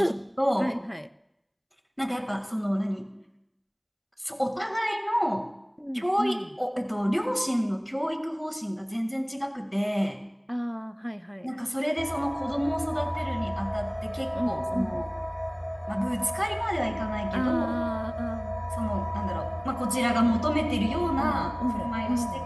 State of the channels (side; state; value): both; identical; correlation 1.00